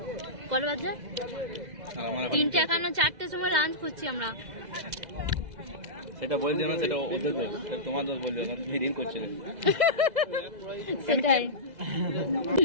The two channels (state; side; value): late; left; 2.0 ms